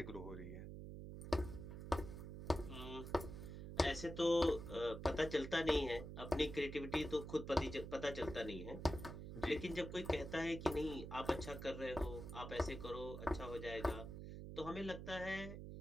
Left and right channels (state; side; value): noise; right; hum, 8 dB below the sound